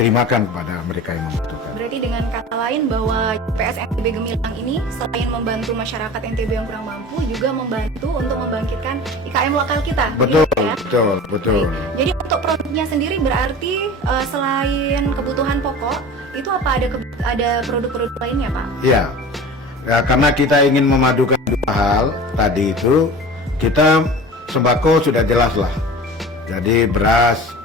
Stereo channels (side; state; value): both; normal; correlation 0.37